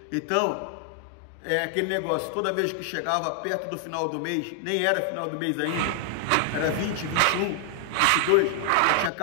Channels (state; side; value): different; both; correlation 0.00